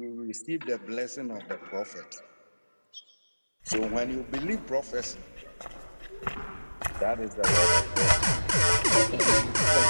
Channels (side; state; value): both; inverted; correlation -1.00